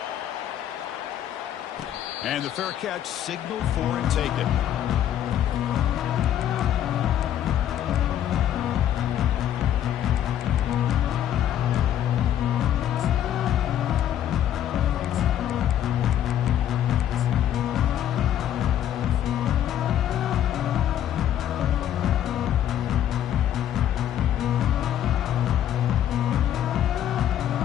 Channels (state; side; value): quieter; right; 10.9 dB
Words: And the fair catch signaled for and taken.